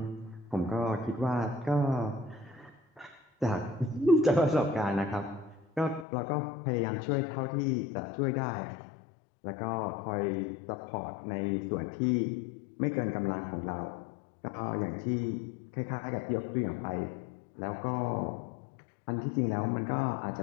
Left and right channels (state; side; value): drops out; right; at 6.1 s